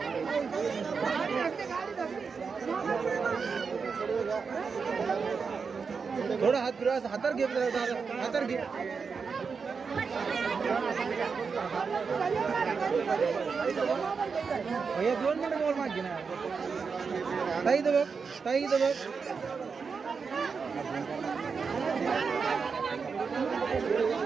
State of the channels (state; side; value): quieter; left; 5.4 dB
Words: थोडा हात फिरवा हातार घे हातार घे भैया 2 मिनिट मोबाईल मागे ना ताई इथं बघ